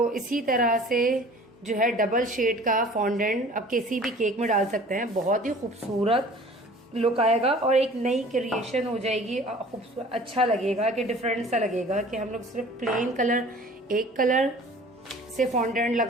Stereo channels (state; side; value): normal; both; correlation 0.47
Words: इसी तरह से जो है डबल शेड का फॉन्डेंट अब किसी भी केक में डाल सकते हैं, बहुत ही खूबसूरत लुक आएगा और एक नई क्रिएशन हो जाएगी। खूबसूरत अच्छा लगेगा कि डिफरेंट सा लगेगा कि हम लोग सिर्फ प्लेन कलर एक कलर से फॉन्डेंट